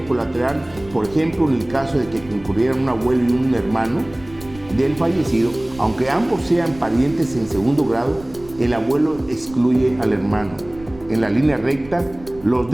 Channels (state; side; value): noise; right; rumble, 20 dB below the sound